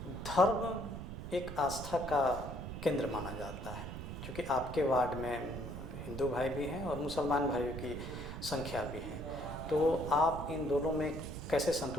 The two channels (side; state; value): right; noise; rumble, 8 dB below the sound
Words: धर्म एक आस्था का केंद्र माना जाता है, क्योंकि आपके वार्ड में हिंदू भाई भी हैं और मुसलमान भाइयों की संख्या भी है, तो आप इन दोनों में कैसे